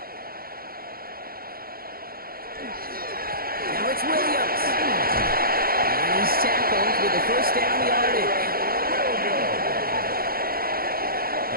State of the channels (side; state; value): left; late; 0.43 ms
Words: Now it's Williams. And he's tackled with the first down yardage.